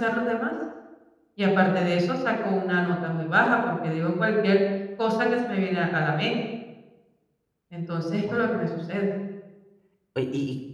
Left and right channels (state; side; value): identical; both; correlation 1.00